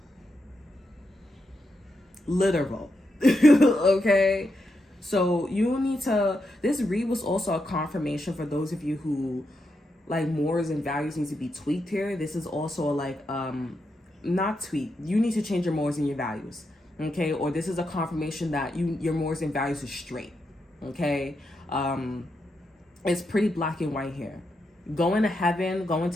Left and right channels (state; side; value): normal; both; correlation 0.84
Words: Literal. Okay? So you need to, this read was also a confirmation for those of you who like morals and values need to be tweaked here. This is also like, not tweaked. You need to change your morals and your values. Okay. Or this is a confirmation that your morals and values are straight. Okay. It's pretty black and white here. Going to heaven, going